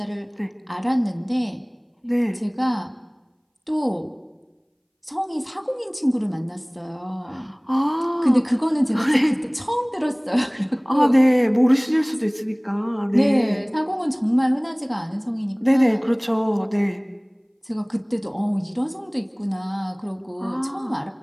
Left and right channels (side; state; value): both; identical; correlation 1.00